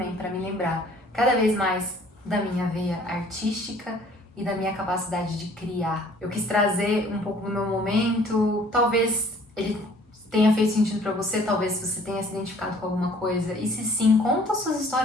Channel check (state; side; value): normal; both; correlation 0.55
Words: para me lembrar cada vez mais da minha veia artística e da minha capacidade de criar. Eu quis trazer um pouco do meu momento, talvez ele tenha feito sentido para você, talvez você tenha se identificado com alguma coisa. E se sim, conta suas